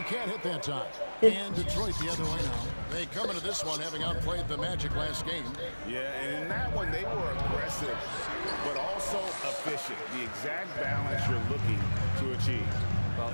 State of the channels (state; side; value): inverted; both; correlation -1.00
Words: can't hit that time. And Detroit the other way now. They come into this one having outplayed the Magic last game. Yeah, and in that one, they were aggressive, but also efficient. The exact balance you're looking to achieve. Well,